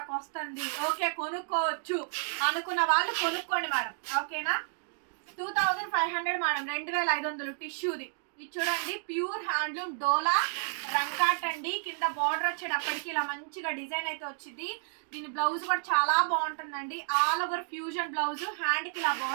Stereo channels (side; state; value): left; silent; digital silence